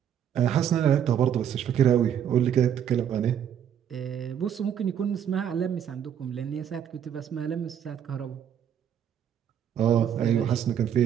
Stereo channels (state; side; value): quieter; left; 9.2 dB